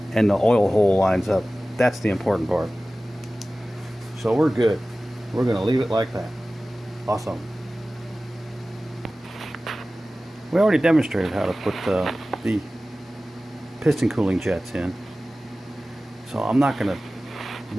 And the oil hole lines up. That's the important part. So we're good. We're going to leave it like that. Awesome. We already demonstrated how to put the piston cooling jets in. So I'm not going to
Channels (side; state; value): both; normal; correlation 0.96